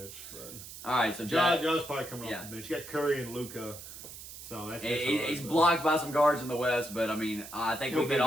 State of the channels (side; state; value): right; noise; hiss, 13 dB below the sound